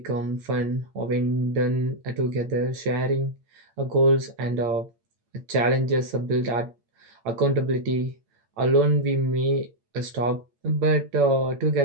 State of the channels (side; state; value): left; late; 8.7 ms